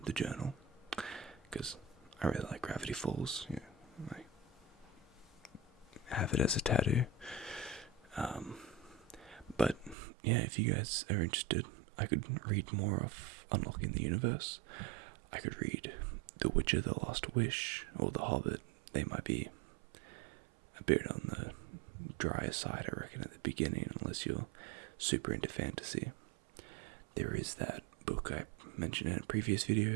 the journal, because I really like Gravity Falls. I have it as a tattoo. But yeah, if you guys are interested, I could read more of Unlocking the Universe. I could read The Witcher, The Last Wish, or The Hobbit. They might be a bit on the drier side, I reckon, at the beginning, unless you're super into fantasy. There is that book I mentioned in a previous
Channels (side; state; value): left; drops out; at 10.0 s